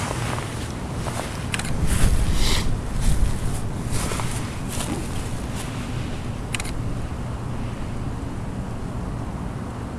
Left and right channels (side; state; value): both; identical; correlation 1.00